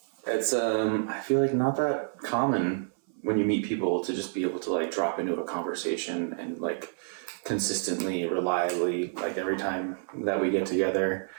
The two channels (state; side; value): silent; left; 58 dB below the other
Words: it's I feel like not that common when you meet people to just be able to like drop into a conversation and like consistently, reliably, like every time that we get together.